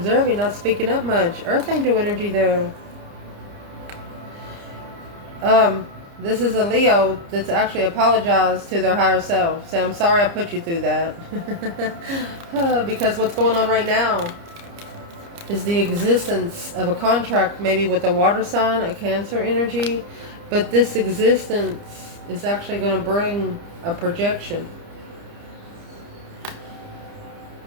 not speaking up much. Earth Angel energy there. This is a Leo that's actually apologized to their higher self. Say, I'm sorry I put you through that. Because what's going on right now is the existence of a contract, maybe with a water sign, a Cancer energy. But this existence is actually going to bring a projection.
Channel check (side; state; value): left; late; 30 ms